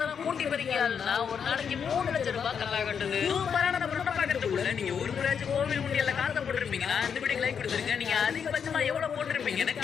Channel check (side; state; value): right; quieter; 7.1 dB